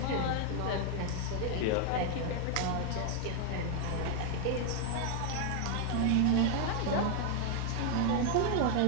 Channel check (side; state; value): both; different; correlation 0.00